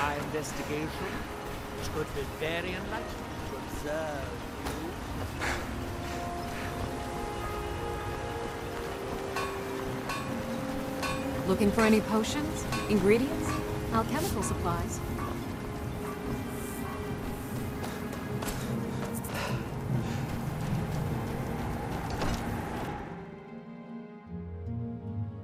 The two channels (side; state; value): both; identical; correlation 1.00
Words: my investigation, which could be very enlightening to observe you. Looking for any potions? Ingredients? Alchemical supplies?